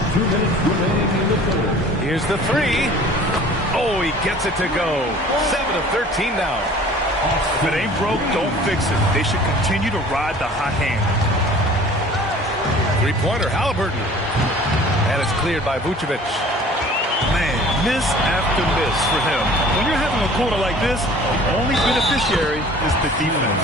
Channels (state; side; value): normal; both; correlation 0.47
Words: 2 minutes remaining in the third. Here's the 3. Oh, he gets it to go. 7 of 13 now. If it ain't broke, don't fix it. They should continue to ride the hot hand. 3-pointer, Halliburton. And it's cleared by Vucevic. Man, Miss after miss for him. When you're having a quarter like this, the only beneficiary is the defense.